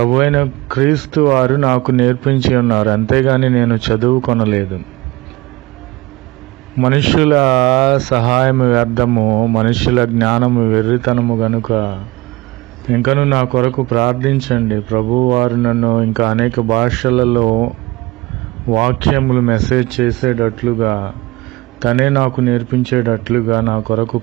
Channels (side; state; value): left; quieter; 20.8 dB